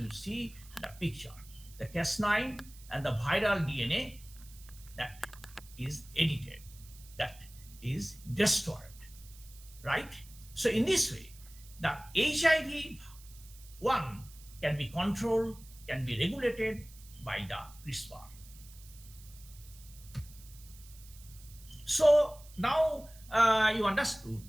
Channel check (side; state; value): right; noise; hiss, 21 dB below the sound